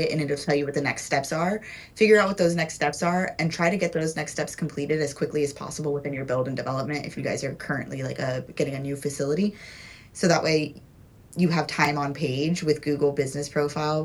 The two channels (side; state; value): both; identical; correlation 1.00